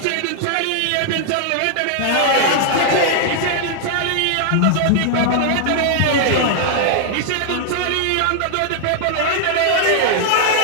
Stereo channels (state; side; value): different; both; correlation 0.00